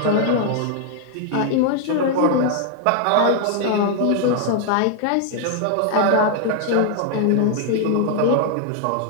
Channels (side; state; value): both; different; correlation 0.00